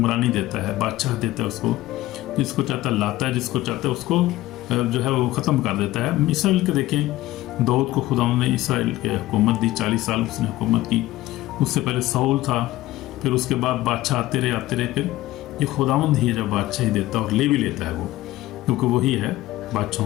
دیتا ہے، بادشاہ دیتا ہے اس کو، جس کو چاہتا ہے لاتا ہے، جس کو چاہتا ہے اس کو جو ہے وہ ختم کر دیتا ہے۔ اسرائیل کے دیکھیں، داؤد کو خدا نے اسرائیل کے حکومت دی، 40 سال اس نے حکومت کی، اس سے پہلے ساؤل تھا، پھر اس کے بعد بادشاہ آتے رہے، پھر یہ خداوند ہی ہے جو بادشاہی دیتا ہے، اور لے بھی لیتا ہے وہ، کیونکہ وہی ہے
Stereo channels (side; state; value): right; quieter; 16.5 dB